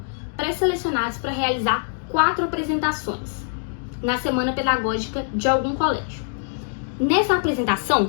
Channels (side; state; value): right; silent; digital silence